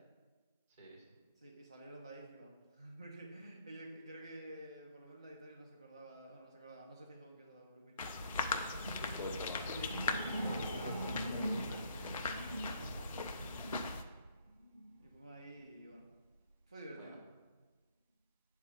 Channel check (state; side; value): inverted; both; correlation -0.65